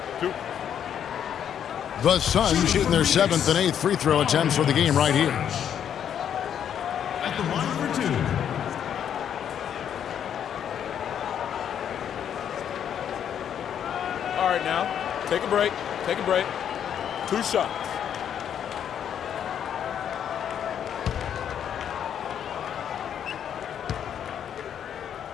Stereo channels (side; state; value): right; quieter; 9.0 dB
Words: 2. The Suns shooting their 7th and 8th free throw attempts for the game right here. At the line for 2. All right, now, take a break. Take a break. 2 shots.